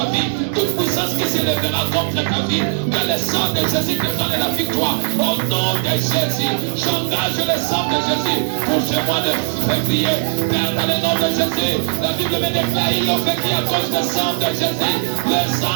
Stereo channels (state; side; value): silent; left; digital silence